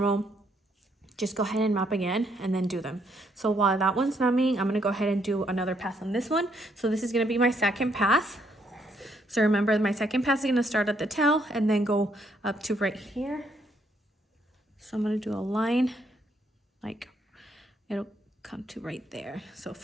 Just go ahead and map again and then do them. So while that one's numbing, I'm gonna go ahead and do another pass on this one. So this is gonna be my second pass. So remember, my second pass is gonna start at the tail and then go up to right here. So I'm gonna do a line, like it'll come to right there. So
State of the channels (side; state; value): both; normal; correlation 0.71